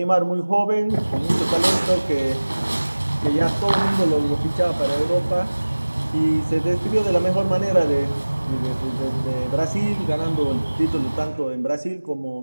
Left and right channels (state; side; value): inverted; both; correlation -1.00